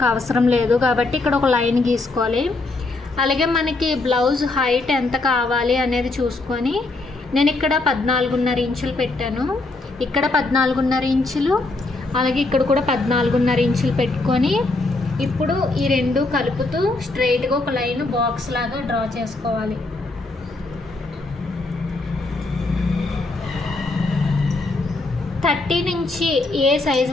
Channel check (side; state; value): right; quieter; 3.2 dB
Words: అవసరం లేదు కాబట్టి ఇక్కడ ఒక లైన్ గీసుకోవాలి. అలాగే మనకి బ్లౌజ్ హైట్ ఎంత కావాలి అనేది చూసుకొని నేను ఇక్కడ 14.5 ఇంచులు పెట్టాను. ఇక్కడ 14.5 ఇంచులు, అలాగే ఇక్కడ కూడా 14.5 ఇంచులు పెట్టుకొని ఇప్పుడు ఈ రెండు కలుపుతూ స్ట్రైట్గా ఒక లైన్ బాక్స్ లాగా డ్రా చేసుకోవాలి. థర్టీ నుంచి ఏ సైజ్